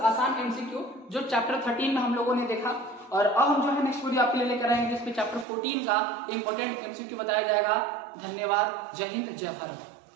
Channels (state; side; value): drops out; left; at 5.5 s